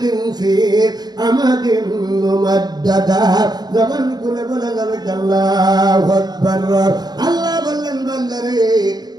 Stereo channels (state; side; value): late; left; 0.20 ms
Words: ফি আমাদিন মুমাদ্দাদা। জবান খুলে বলা যাবে আল্লাহু আকবার। আল্লাহ বললেন বান্দারে